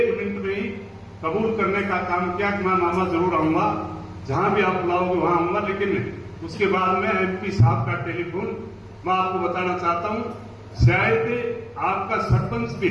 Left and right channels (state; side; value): identical; both; correlation 1.00